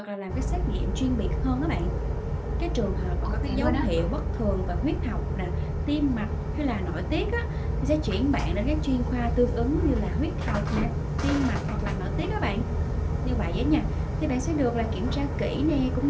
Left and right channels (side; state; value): both; identical; correlation 1.00